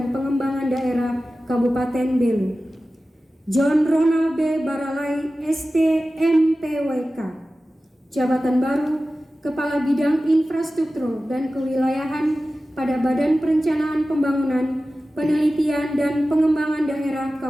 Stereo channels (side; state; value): both; normal; correlation 0.95